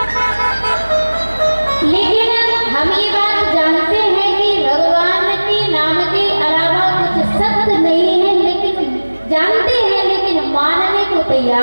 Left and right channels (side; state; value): both; inverted; correlation -1.00